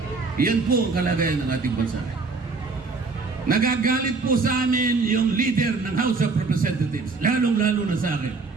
Yan po ang kalagayan ng ating bansa. Nagagalit po sa amin yung leader ng House of Representatives, lalong-lalo na sa akin.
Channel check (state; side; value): quieter; left; 4.1 dB